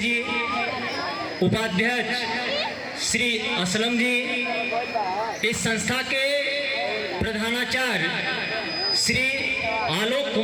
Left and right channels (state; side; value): identical; both; correlation 1.00